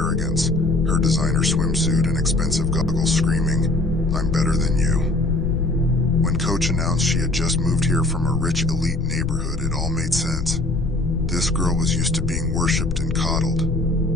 her designer swimsuit and expensive goggles screaming, "I'm better than you." When Coach announced she had just moved here from a rich elite neighborhood, it all made sense. This girl was used to being worshipped and coddled.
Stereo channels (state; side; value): noise; left; rumble, 4 dB below the sound